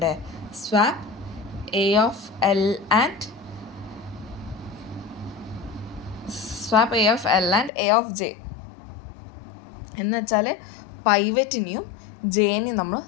Swap A of L and A of J. എന്ന് വെച്ചാൽ പൈവറ്റിനെയും ജെനെയും നമ്മൾ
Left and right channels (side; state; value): right; drops out; at 7.7 s